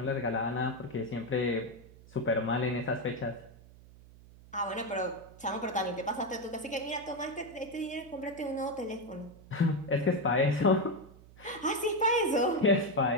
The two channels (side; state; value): right; noise; hum, 22 dB below the sound